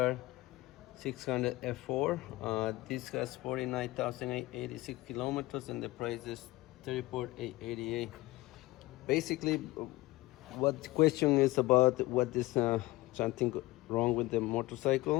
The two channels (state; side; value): quieter; right; 19.4 dB